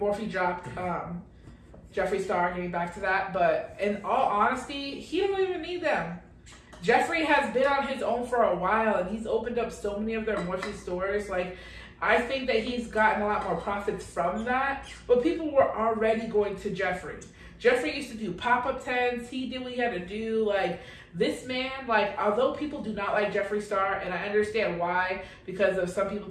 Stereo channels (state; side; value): identical; both; correlation 1.00